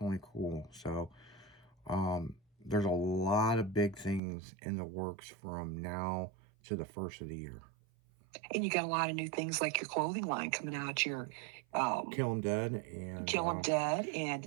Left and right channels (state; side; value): drops out; left; at 4.2 s